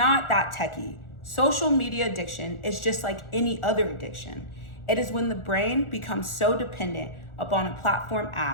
that techy. Social media addiction is just like any other addiction. It is when the brain becomes so dependent upon a platform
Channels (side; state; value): right; late; 1.4 ms